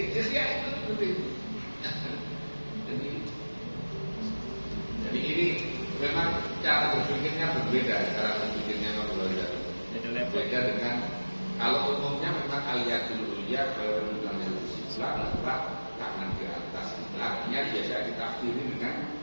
Asia itu seperti itu. Jadi ini memang cara berpikirnya berbeda, cara berpikirnya berbeda. Beda dengan kalau umumnya memang aliyatul ulia kalau dengan Islam adalah tangan di atas. Artinya biasa ditafsiri dengan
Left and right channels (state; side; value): inverted; both; correlation -1.00